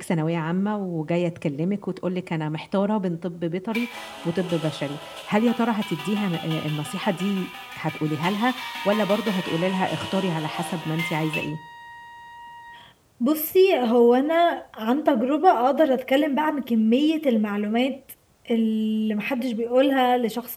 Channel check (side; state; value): both; identical; correlation 1.00